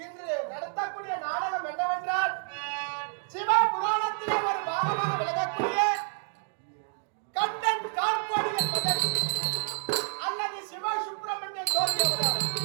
இன்று நடத்தக்கூடிய நாடகம் என்னவென்றால் சிவ புராணத்திலே ஒரு பாகமாக விளங்கக்கூடிய கண்டன் கார்பாடியன் மகன் அல்லது சிவ சுப்பிரமணியன் ஜோதி அவதாரம்.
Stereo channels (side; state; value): left; silent; digital silence